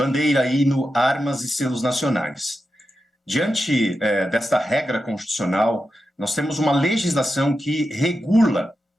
hino, armas e selos nacionais. Diante desta regra constitucional, nós temos uma legislação que regula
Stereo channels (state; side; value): normal; both; correlation 0.89